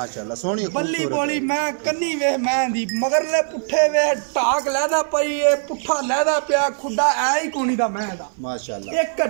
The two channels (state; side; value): silent; left; 58 dB below the other